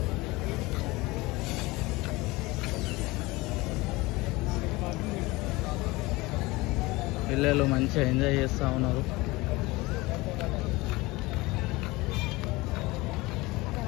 పిల్లలు మంచిగా ఎంజాయ్ చేస్తూ ఉన్నారు.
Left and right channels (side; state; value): right; quieter; 21.8 dB